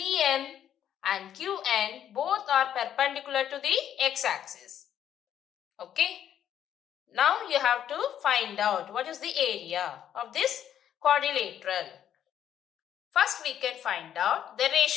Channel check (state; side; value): quieter; right; 10.1 dB